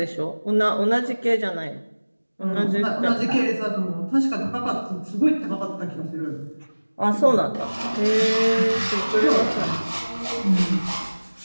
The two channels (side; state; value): both; inverted; correlation -1.00